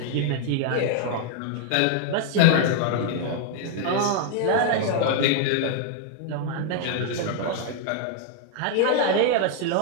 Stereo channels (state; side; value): different; both; correlation 0.00